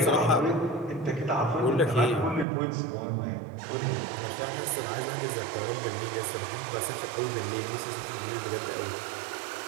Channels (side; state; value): left; drops out; at 2.5 s